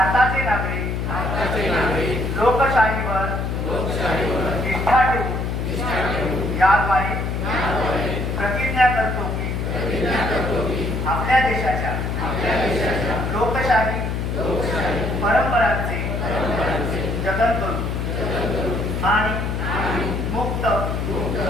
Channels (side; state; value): left; noise; hum, 1 dB below the sound